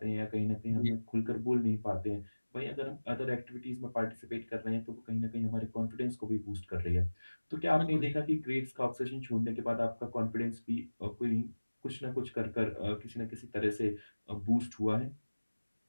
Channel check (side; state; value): both; inverted; correlation -1.00